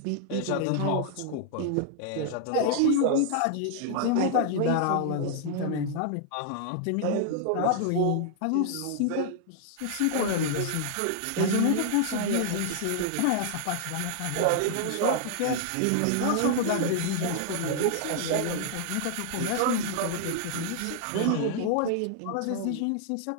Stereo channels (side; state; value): both; different; correlation 0.00